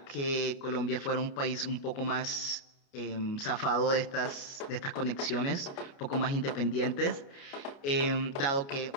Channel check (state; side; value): late; right; 29 ms